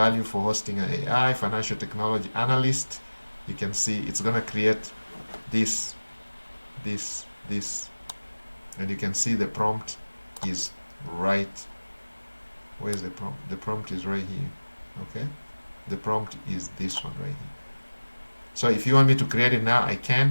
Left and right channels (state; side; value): inverted; both; correlation -1.00